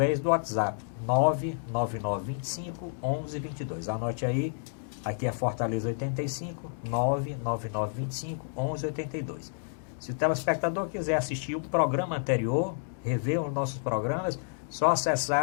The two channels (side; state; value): right; silent; digital silence